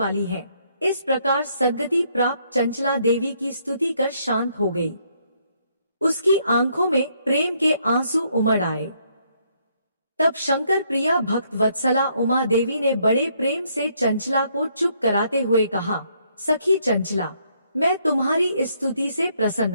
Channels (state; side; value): inverted; both; correlation -0.71